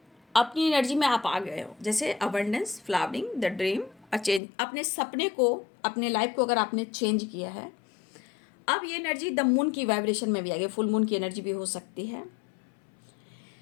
अपनी एनर्जी में आप आ गए हो, जैसे abundance, flowering, the dream, a change, अपने सपने को, अपने लाइफ को अगर आपने चेंज किया है, अब ये एनर्जी द मून की वाइब्रेशन में भी आ गई, फुल मून की एनर्जी भी हो सकती है।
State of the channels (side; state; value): right; drops out; at 4.4 s